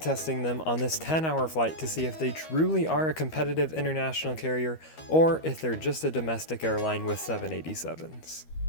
them on this 10-hour flight to see if they truly are a competitive international carrier or if they're just a domestic airline with 787s.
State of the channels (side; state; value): right; late; 13 ms